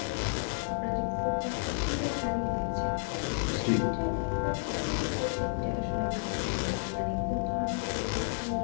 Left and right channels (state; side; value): silent; right; digital silence